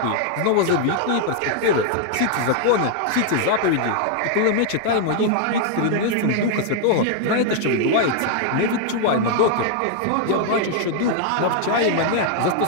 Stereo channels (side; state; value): both; different; correlation 0.00